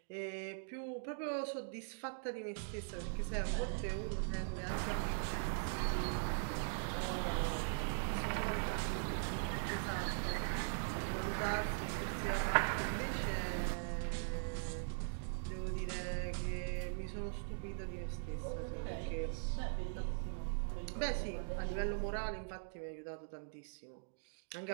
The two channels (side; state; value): left; silent; digital silence